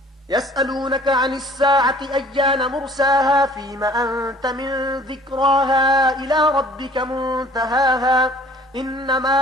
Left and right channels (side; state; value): both; normal; correlation 0.52